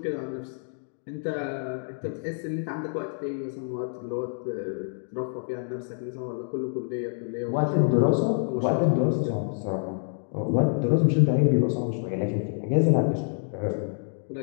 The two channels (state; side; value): silent; right; 60 dB below the other